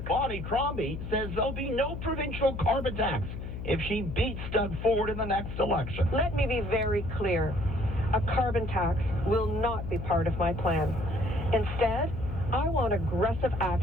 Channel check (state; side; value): noise; left; hum, 7 dB below the sound